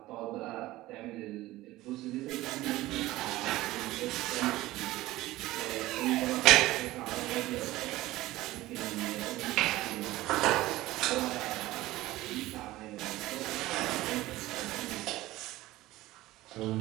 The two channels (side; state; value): left; quieter; 17.4 dB